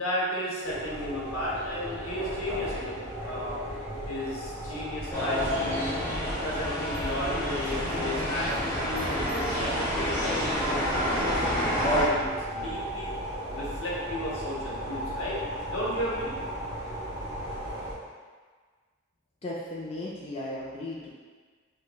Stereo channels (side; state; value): both; normal; correlation 0.20